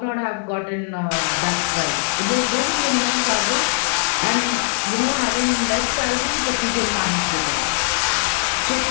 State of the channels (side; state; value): right; silent; digital silence